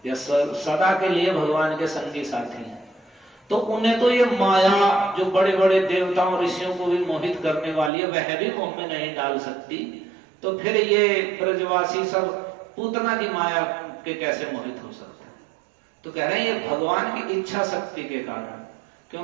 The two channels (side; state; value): left; drops out; at 7.9 s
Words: या सदा के लिए भगवान के संगी साथी हैं। तो उन्हें तो ये माया जो बड़े बड़े देवताओं ऋषियों को भी मोहित करने वाली है, वह भी मोह में नहीं डाल सकती, तो फिर ये ब्रजवासी सब पूतना की माया के कैसे मोहित हो सकते हैं? तो कह रहे हैं ये भगवान की इच्छा शक्ति के कारण,